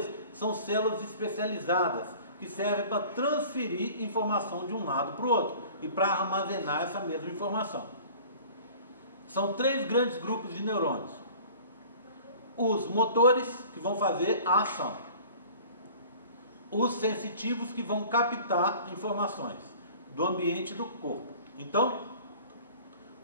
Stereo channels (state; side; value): inverted; both; correlation -0.46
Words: são células especializadas, que servem para transferir informação de um lado para o outro e para armazenar essa mesma informação. São 3 grandes grupos de neurônios. Os motores, que vão fazer a ação. Os sensitivos, que vão captar informações do ambiente e do corpo. Então,